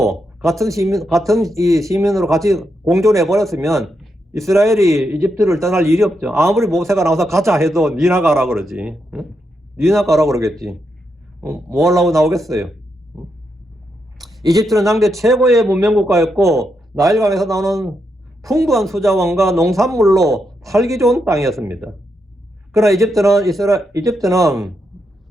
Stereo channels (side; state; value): both; normal; correlation 0.82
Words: 같은 시민으로 같이 공존해 버렸으면 이스라엘이 이집트를 떠날 일이 없죠. 아무리 모세가 나와서 가자 해도 니나 가라 그러지. 니나 가라 그러겠지. 뭐 하려고 나오겠어요. 이집트는 당대 최고의 문명국가였고 나일강에서 나오는 풍부한 수자원과 농산물로 살기 좋은 땅이었습니다. 그러나 이집트는